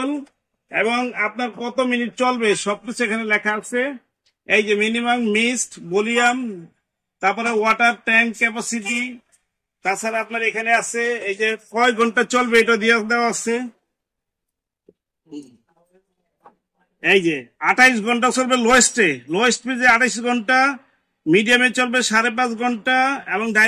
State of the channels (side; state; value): both; identical; correlation 1.00